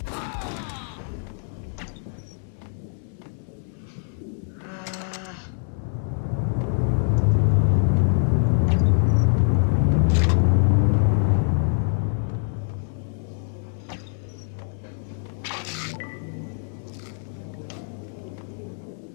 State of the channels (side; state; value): right; silent; digital silence